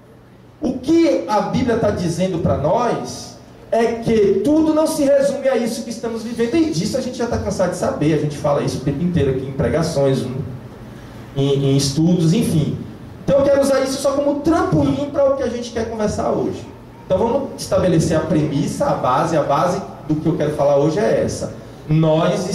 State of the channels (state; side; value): identical; both; correlation 1.00